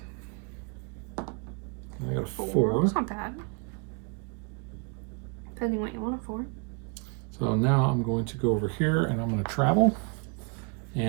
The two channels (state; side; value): quieter; left; 35.0 dB